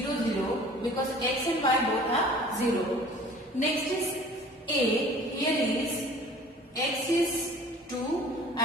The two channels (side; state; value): both; normal; correlation 0.48